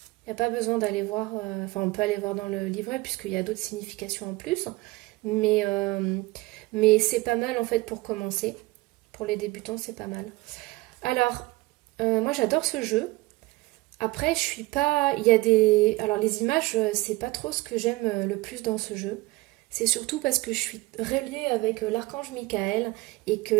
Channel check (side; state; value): left; quieter; 21.5 dB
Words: Il n'y a pas besoin d'aller voir, on peut aller voir dans le livret puisqu'il y a d'autres significations en plus, mais c'est pas mal en fait pour commencer. Pour les débutants, c'est pas mal. Alors, moi j'adore ce jeu. Après, je suis pas. Il y a des. Alors, les images, c'est pas trop ce que j'aime le plus dans ce jeu. C'est surtout parce que je suis reliée avec l'archange Michael et que